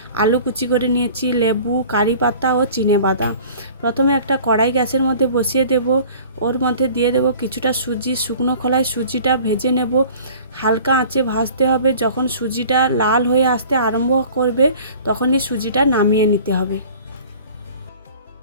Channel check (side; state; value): both; inverted; correlation -0.46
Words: আলু কুচি করে নিয়েছি, লেবু, কারি পাতা ও চিনেবাদাম। প্রথমে একটা কড়াই গ্যাসের মধ্যে বসিয়ে দেব। ওর মধ্যে দিয়ে দেব কিছুটা সুজি। শুকনো খোলায় সুজিটা ভেজে নেব। হালকা আঁচে ভাজতে হবে। যখন সুজিটা লাল হয়ে আসতে আরম্ভ করবে তখনই সুজিটা নামিয়ে নিতে হবে।